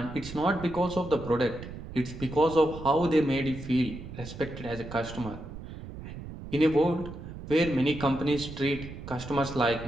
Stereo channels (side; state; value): right; noise; rumble, 12 dB below the sound